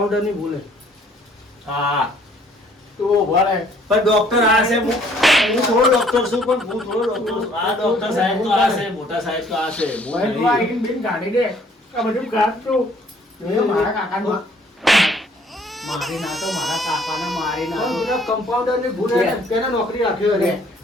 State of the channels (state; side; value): normal; both; correlation 0.60